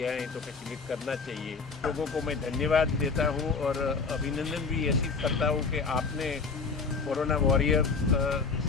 है तो फैसिलिटेट करना चाहिए। लोगों को मैं धन्यवाद देता हूँ और अभिनंदन भी ऐसी करता हूँ कि आपने कोरोना वॉरियर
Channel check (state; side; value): quieter; right; 4.7 dB